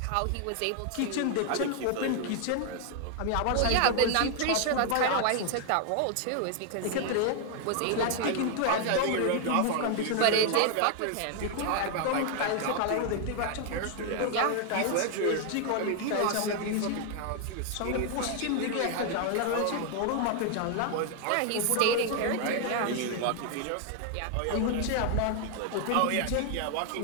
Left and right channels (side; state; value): both; different; correlation 0.00